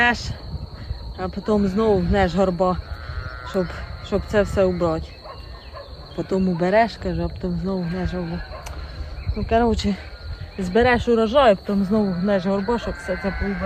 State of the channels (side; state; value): both; identical; correlation 1.00